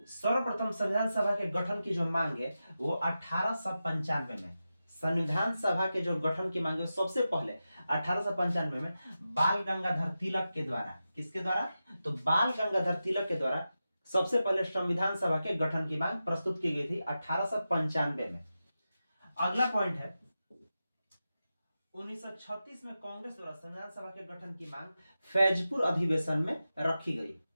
सर्वप्रथम संविधान सभा के गठन की जो मांग है वो 1895 में संविधान सभा के जो गठन की मांग है सबसे पहले 1895 में बाल गंगाधर तिलक के द्वारा, किसके द्वारा? तो बाल गंगाधर तिलक के द्वारा सबसे पहले संविधान सभा के गठन की मांग प्रस्तुत की गई थी 1895 में। अगला पॉइंट है 1936 में कांग्रेस द्वारा संविधान सभा के गठन की मांग फैजपुर अधिवेशन में रखी गई।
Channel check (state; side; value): inverted; both; correlation -0.92